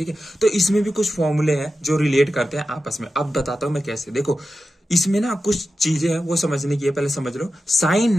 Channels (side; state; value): both; normal; correlation 0.91